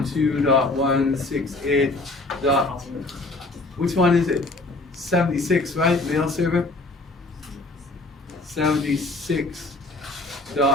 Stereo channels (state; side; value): quieter; right; 3.0 dB